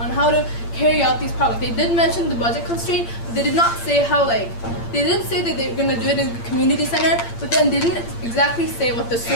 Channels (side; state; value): right; late; 8.7 ms